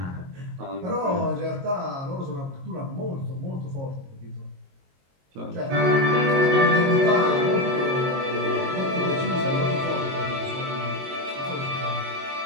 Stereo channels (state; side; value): late; left; 22 ms